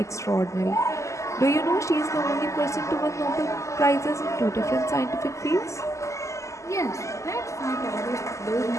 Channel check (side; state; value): right; late; 0.15 ms